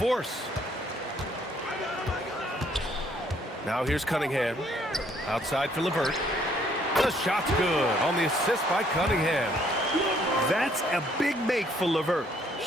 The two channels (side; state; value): both; normal; correlation 0.65